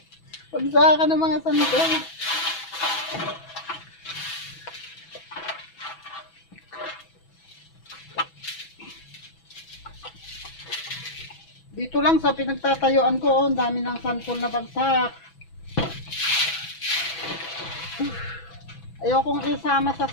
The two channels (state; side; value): late; right; 6.1 ms